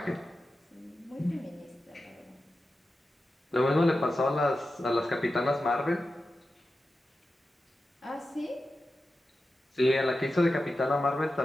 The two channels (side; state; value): both; normal; correlation 0.92